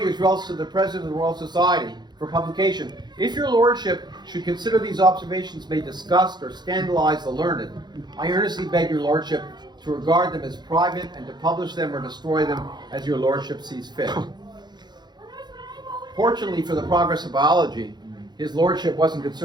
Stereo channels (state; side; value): late; left; 0.21 ms